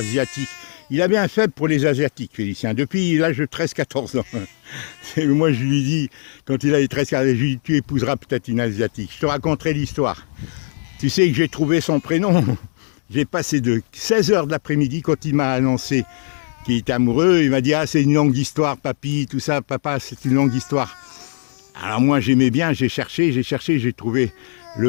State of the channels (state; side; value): silent; right; 61 dB below the other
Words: Il avait un faible pour les Asiatiques, Félicien, depuis l'âge de 13-14 ans. Moi, je lui dis, quand il avait 13-14 ans, je lui dis, tu épouseras peut-être une Asiatique. Je te raconterai l'histoire. Tu sais que j'ai trouvé son prénom. J'ai passé de 16h de l'après-midi, quand il m'a annoncé qu'il était amoureux, il m'a dit, ah, c'est une longue histoire, papy, tout ça, papa, c'est une longue histoire. Alors moi, j'aimais bien, j'ai cherché, j'ai trouvé le